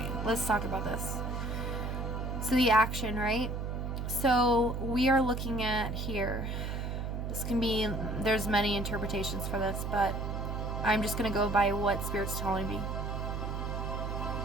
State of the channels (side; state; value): right; noise; hum, 3 dB below the sound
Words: let's talk about this. So the action, right? So we are looking at here. This can be, there's many interpretations for this, but I'm just going to go by what Spirit's telling me.